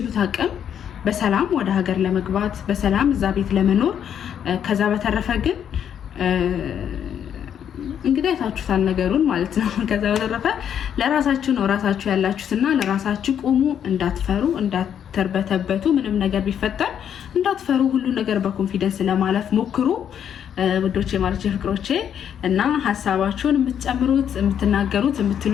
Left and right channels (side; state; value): right; quieter; 8.9 dB